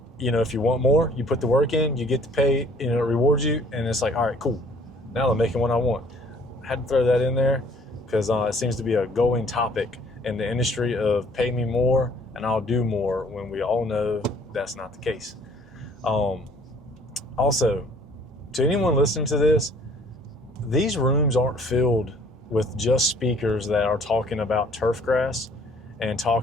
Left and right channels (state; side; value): normal; both; correlation 0.57